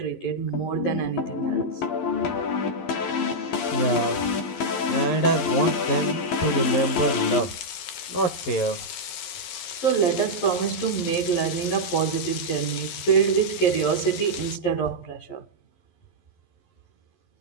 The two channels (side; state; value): right; late; 11 ms